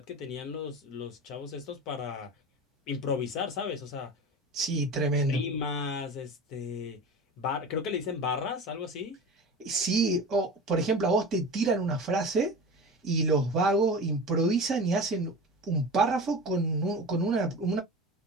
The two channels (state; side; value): normal; both; correlation 0.32